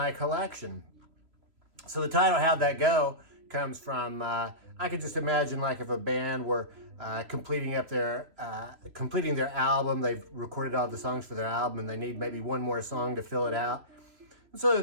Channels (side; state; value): left; late; 3.1 ms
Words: collection. So the title How'd That Go comes from, I could just imagine like if a band were completing their album, they've recorded all the songs for their album and they need maybe one more song to fill it out. And so